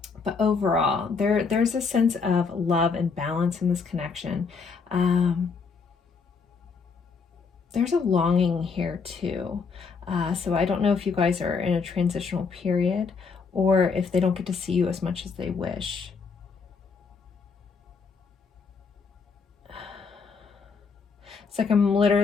But overall, there's a sense of love and balance in this connection. There's a longing here too. So I don't know if you guys are in a transitional period or if they don't get to see you as much as they wish. It's like I'm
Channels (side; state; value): right; quieter; 5.2 dB